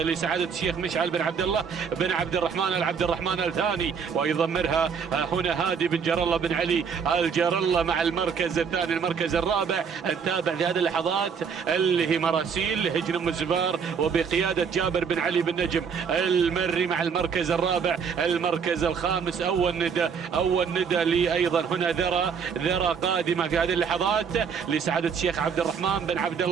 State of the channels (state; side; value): quieter; left; 6.4 dB